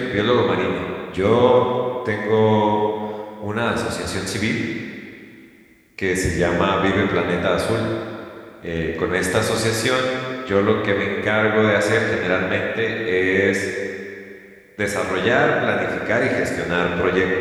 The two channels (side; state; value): both; identical; correlation 1.00